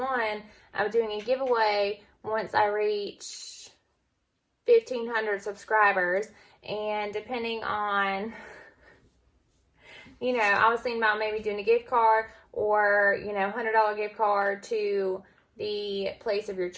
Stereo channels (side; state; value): both; identical; correlation 1.00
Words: I'm doing a giveaway once I reach 1,500 subscribers. And depending on, I was thinking about maybe doing a gift card or, $100 gift card to the place of your